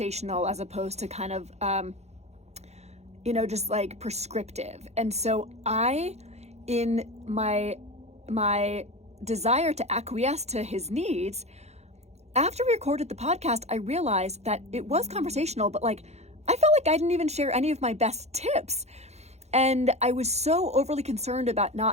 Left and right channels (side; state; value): left; late; 0.32 ms